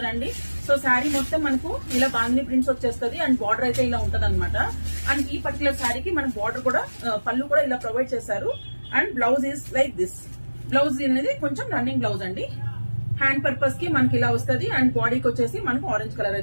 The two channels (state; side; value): inverted; both; correlation -1.00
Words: సో శారీ మొత్తం మనకు ఇలా బాందిని ప్రింట్స్ వచ్చేస్తుంది. అండ్ బార్డర్ అయితే ఇలా ఉంటది అనమాట. అండ్ ఈ పర్టికులర్ శారీకి మనకు బార్డర్ కూడా పళ్ళు కూడా ఇలా ప్రొవైడ్ చేశారు. And blouse is like this. Blouse అనేది కొంచెం రన్నింగ్ బ్లౌజ్ అండి. హ్యాండ్ పర్పస్ కి మనకి ఇలా వస్తుంది. అండ్ బాడీకి వచ్చేసి మనకు ఆరెంజ్ కలర్